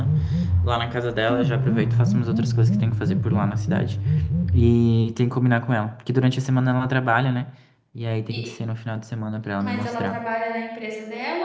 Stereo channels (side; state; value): both; identical; correlation 1.00